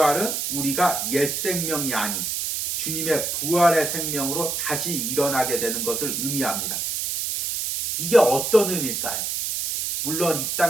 우리가 옛 생명이 아닌 주님의 부활의 생명으로 다시 일어나게 되는 것을 의미합니다. 이게 어떤 의미일까요? 물론 이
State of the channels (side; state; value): right; noise; hiss, 2 dB below the sound